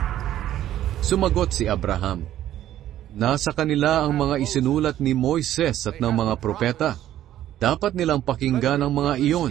Sumagot si Abraham, "Nasa kanila ang mga isinulat ni Moises at ng mga propeta. Dapat nilang pakinggan ang mga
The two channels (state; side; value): quieter; left; 12.4 dB